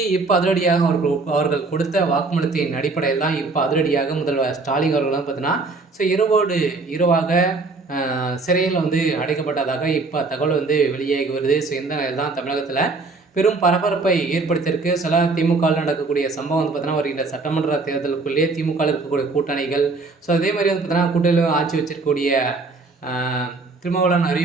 இப்போ அதிரடியாக அவர்கள் கொடுத்த வாக்குமூலத்தின் அடிப்படையில் தான் இப்போ அதிரடியாக முதல்வர் ஸ்டாலின் அவர்கள்லாம் பார்த்தீங்கன்னா ஸோ இரவாக சிறையில் அடைக்கப்பட்டதாக இப்போ தகவல் வெளியாகி வருது. ஸோ இந்த நிலையில் தான் தமிழகத்தில் பெரும் பரபரப்பை ஏற்படுத்தியிருக்கு. சில திமுகவில் நடக்கக்கூடிய சம்பவம் பார்த்தீங்கன்னா வருகின்ற சட்டமன்ற தேர்தலுக்குள்ளேயே திமுகவில் இருக்கக்கூடிய கூட்டணிகள், ஸோ அதே மாதிரி பார்த்தீங்கன்னா கூட்டணியில் ஆட்சி வச்சிருக்கக்கூடிய திருமாவளவன்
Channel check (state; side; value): quieter; left; 3.8 dB